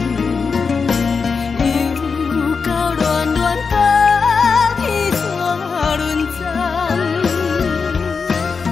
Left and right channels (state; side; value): quieter; right; 5.2 dB